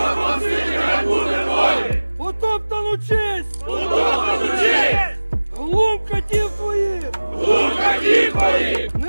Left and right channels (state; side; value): inverted; both; correlation -1.00